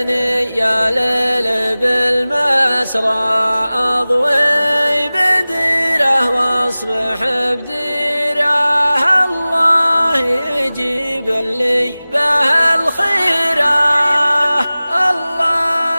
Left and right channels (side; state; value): both; inverted; correlation -0.98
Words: يا ليل بالمسرى أضوي بديره واصبح بديره، الله يجيب لي به الخيره،